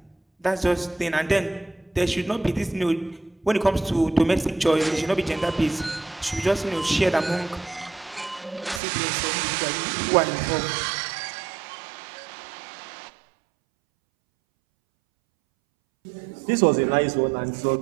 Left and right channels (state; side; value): drops out; left; at 8.8 s